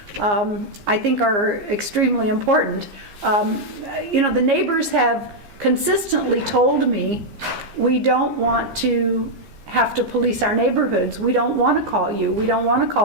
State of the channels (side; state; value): left; late; 15 ms